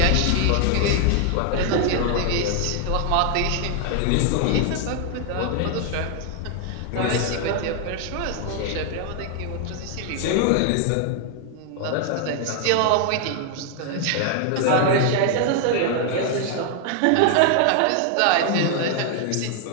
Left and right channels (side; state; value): both; different; correlation 0.00